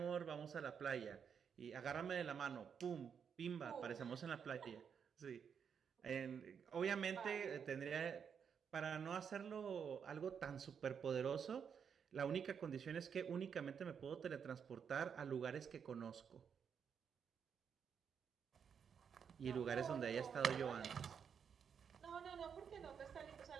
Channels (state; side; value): quieter; left; 7.1 dB